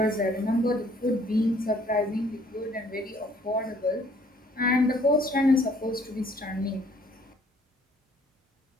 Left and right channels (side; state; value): both; normal; correlation 0.60